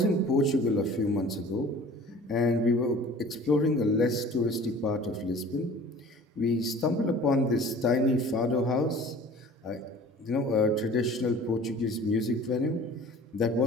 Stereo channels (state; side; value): normal; both; correlation 0.46